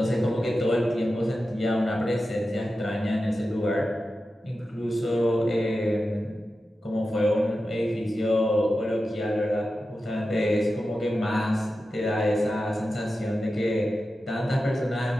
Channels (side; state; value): both; normal; correlation 0.92